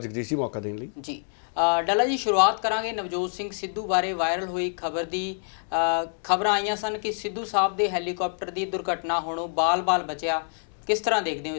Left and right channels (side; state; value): right; silent; 61 dB below the other